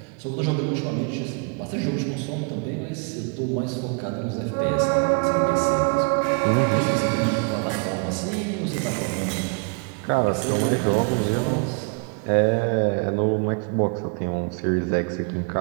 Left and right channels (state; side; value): quieter; left; 36.6 dB